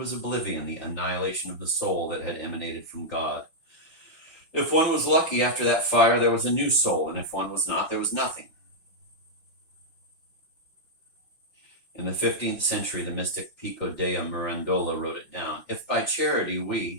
oblivion, the annihilation of the soul that had emanated from God. If one was lucky after that fire, there was a new soul, and if one was not, there was nothing. In the 15th century, the mystic Pico dea Mirandola wrote it down. If by charity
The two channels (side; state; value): right; late; 5.5 ms